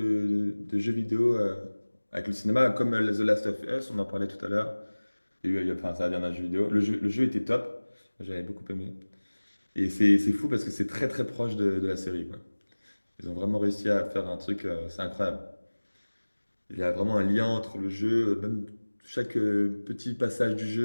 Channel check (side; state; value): both; inverted; correlation -1.00